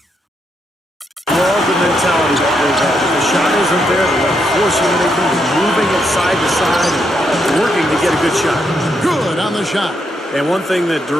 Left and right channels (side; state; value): both; normal; correlation 0.79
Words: Love the mentality that goes on. If the shot isn't there, they're forcing anything, moving it side to side, and working to get a good shot. Good on the shot. And one thing that